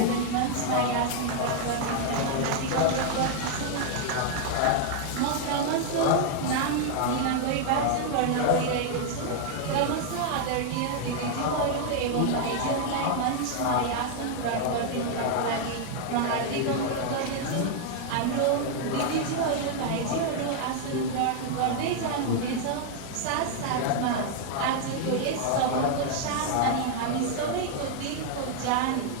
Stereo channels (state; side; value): different; both; correlation 0.00